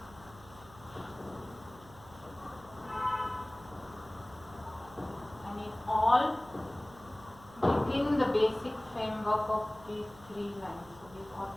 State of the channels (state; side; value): noise; right; hum, 21 dB below the sound